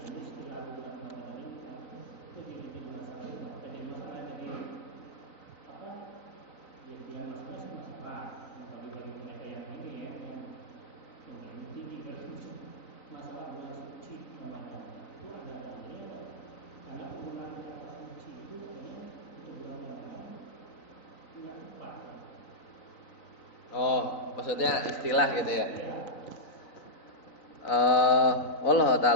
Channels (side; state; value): right; late; 3.9 ms